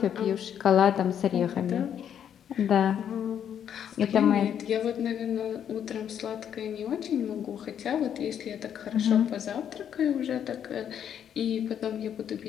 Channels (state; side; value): quieter; right; 9.0 dB